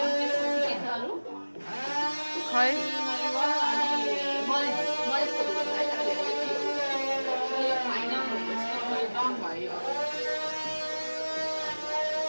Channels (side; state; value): both; inverted; correlation -1.00